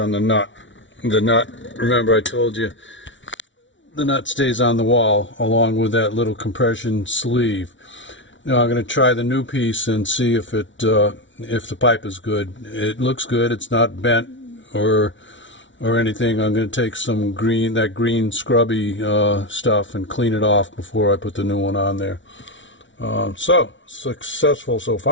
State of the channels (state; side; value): late; right; 0.55 ms